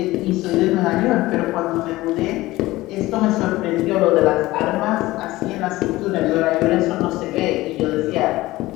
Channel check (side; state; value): right; quieter; 18.2 dB